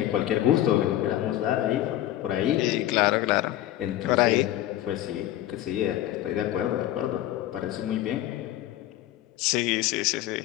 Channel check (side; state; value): right; quieter; 13.8 dB